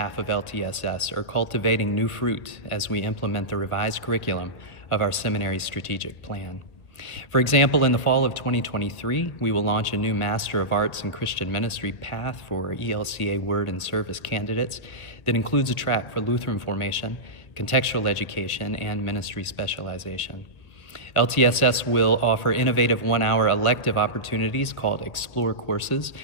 of LTSS are cultivating new fruit as we implement the revised curriculum of our seminary strategic plan. For example, in the fall of 2023, we will launch a new Master of Arts in Christian Ministry path for ELCA Word and Service candidates that includes a track for Lutheran formation, contextual education, and ministry specialization. LTSS will offer innovative one-hour elective opportunities called Explore courses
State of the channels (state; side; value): late; right; 1.6 ms